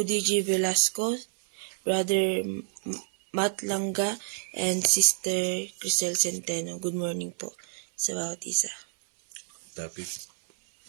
Velasco, Brother Matt Langga, and Sister Crisel Centeno. Good morning po sa bawat isa. Topic.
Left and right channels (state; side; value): silent; left; 59 dB below the other